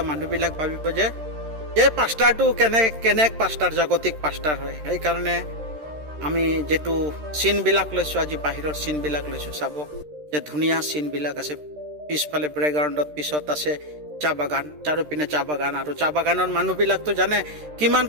মানুহবিলাক ভাবিব যে পাষ্টাৰটো কেনে পাষ্টাৰ, জাগতিক পাষ্টাৰ হয়। সেইকাৰণে আমি যিটো চিনবিলাক লৈছোঁ, আজি বাহিৰৰ চিনবিলাক লৈছোঁ। চাব যে ধুনীয়া চিনবিলাক আছে। পিছফালে ব্ৰেকগ্ৰাউণ্ডত পিছত আছে চাহ বাগান, চাৰিওপিনে চাহ বাগান। আৰু চাহ বাগানৰ মানুহবিলাকতো জানে কিমান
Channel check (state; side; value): late; left; 13 ms